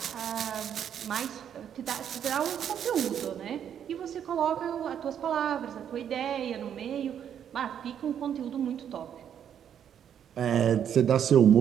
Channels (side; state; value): left; quieter; 9.0 dB